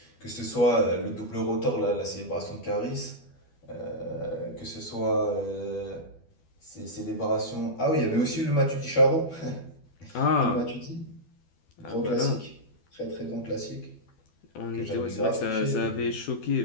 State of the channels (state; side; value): late; right; 12 ms